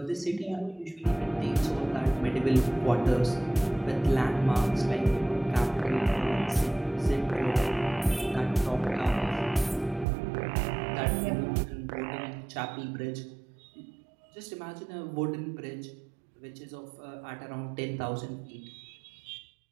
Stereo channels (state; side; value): drops out; left; at 10.1 s